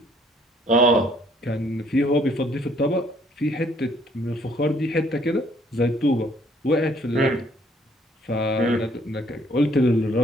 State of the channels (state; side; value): normal; both; correlation 0.63